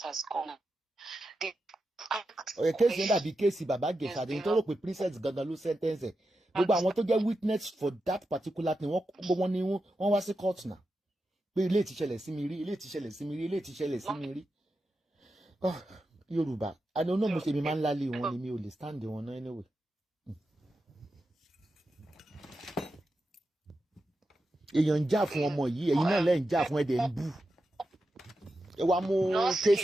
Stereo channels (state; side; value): normal; both; correlation 0.89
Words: has gone on. Case Baba Gesha, they told me Princess Gagalu sentence. But I want to get witness for that particular thing. One was a court now. But late Simiri. Oh, Yoruba. I don't know Muslim man lali one me only stand the one anyway. Èyàn jà fún ọmọ yìí, ẹ̀yin náà lẹ́ ń jà fún ẹ̀dẹ̀ ń bú. Ẹ wá mú